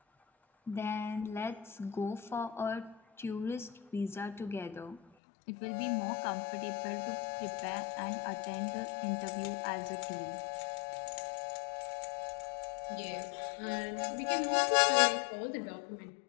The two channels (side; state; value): right; drops out; at 5.0 s